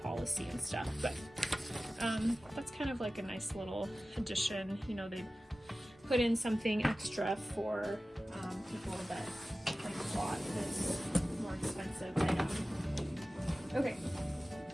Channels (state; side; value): normal; both; correlation 0.96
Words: policy and stuff, but that's kind of like a nice little addition. You know, they put in something extra for people that like bought this more expensive item. Okay.